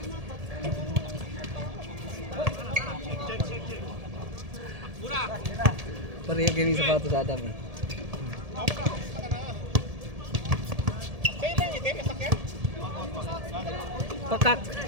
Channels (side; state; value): left; late; 1.7 ms